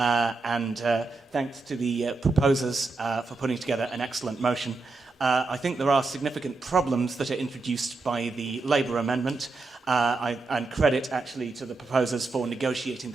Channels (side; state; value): left; quieter; 3.7 dB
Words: thanks to the proposers for putting together an excellent motion. I think there are significant problems that are introduced by the Labour amendment, and credit actually to the proposers for negotiating